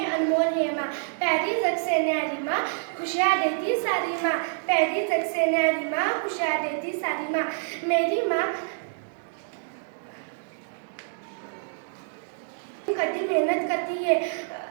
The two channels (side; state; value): left; silent; digital silence